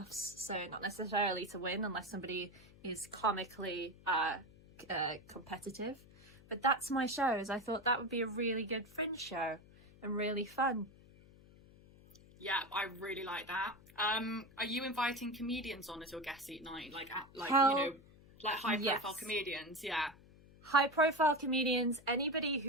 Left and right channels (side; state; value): left; noise; hum, 23 dB below the sound